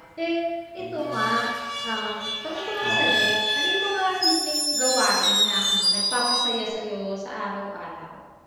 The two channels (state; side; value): identical; both; correlation 1.00